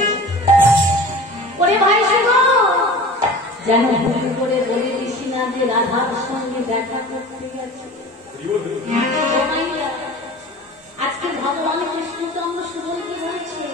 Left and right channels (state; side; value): normal; both; correlation 0.39